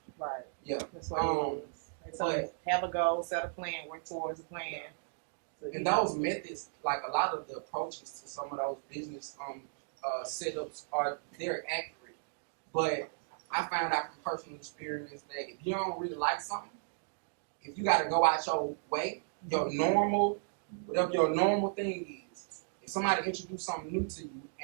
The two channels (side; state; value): left; silent; digital silence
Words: Right. Yeah. That's what it is. So have a goal, set a plan, work towards a plan. And those methods, like a lot of the approaches to some of those business setups they're accurate. But I found out from personal experience that if you don't really like something, if you got to go out your way, whatever your normal thing is, if somebody introduced something new to you